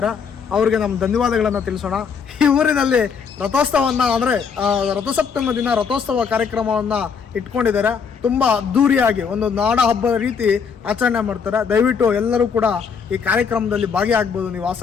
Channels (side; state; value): right; quieter; 6.3 dB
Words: ಅವರಿಗೆ ನಮ್ಮ ಧನ್ಯವಾದಗಳನ್ನು ತಿಳಿಸೋಣ. ಈ ಊರಿನಲ್ಲಿ ರಥೋತ್ಸವವನ್ನು ಅಂದರೆ ರಥಸಪ್ತಮಿ ದಿನ ರಥೋತ್ಸವ ಕಾರ್ಯಕ್ರಮವನ್ನು ಇಟ್ಕೊಂಡಿದ್ದಾರೆ. ತುಂಬ ಅದ್ದೂರಿಯಾಗಿ ಒಂದು ನಾಡ ಹಬ್ಬದ ರೀತಿ ಆಚರಣೆ ಮಾಡ್ತಾರೆ. ದಯವಿಟ್ಟು ಎಲ್ಲರೂ ಕೂಡ ಈ ಕಾರ್ಯಕ್ರಮದಲ್ಲಿ ಭಾಗಿಯಾಗಬಹುದು ನೀವು